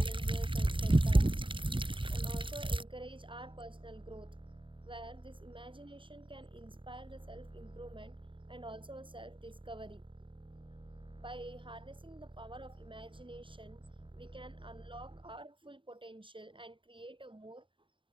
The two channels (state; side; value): late; left; 0.25 ms